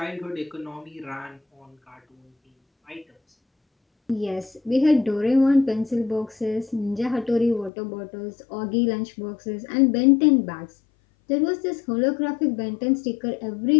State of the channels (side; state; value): right; drops out; at 7.7 s